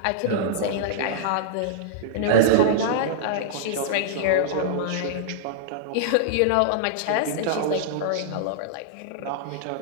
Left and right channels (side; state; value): both; different; correlation -0.02